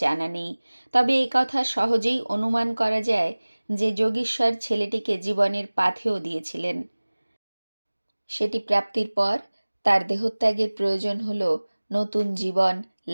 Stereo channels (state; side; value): inverted; both; correlation -1.00